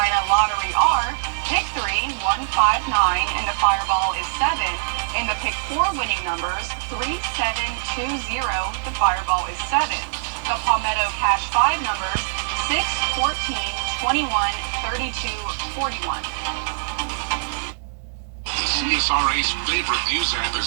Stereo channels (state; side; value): silent; left; 64 dB below the other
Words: lottery are pick 3, 159, and the Fireball is 7. And the pick 4 winning numbers, 3720, the Fireball is 7. The Palmetto Cash 5 numbers, 6, 14, 21, 32, 41. The CSRA's favorite news app is